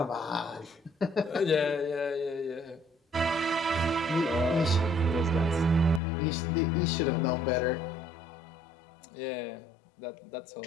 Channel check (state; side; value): drops out; right; at 6.0 s